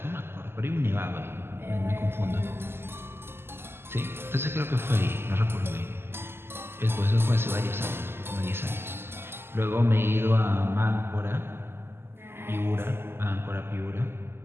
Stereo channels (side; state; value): left; late; 0.12 ms